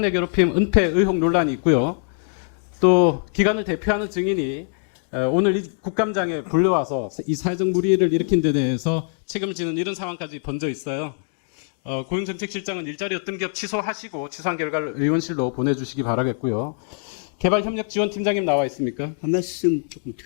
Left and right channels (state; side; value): silent; right; 63 dB below the other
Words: 내 괴롭힘, 은폐 의혹 논란이 있고요. 또 기관을 대표하는 증인이 오늘 이 국감장에 불러와서 이 사회적 무리를 일으킨 데 대해서 책임지는 이런 상황까지 본적 있어요. 고용정책실장은 일자리 어떤 기업 취소하시고 취소한 결과를 의원실로 보내주시기 바라겠고요. 개발협력지원팀장님 나와 있습니까? 한 말씀 조금